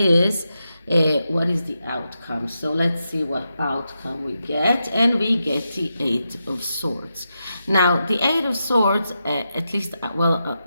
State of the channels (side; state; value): both; inverted; correlation -0.87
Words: what is the outcome. So let's see what outcome we get. And we get the Eight of Swords. Now, the Eight of Swords, at least,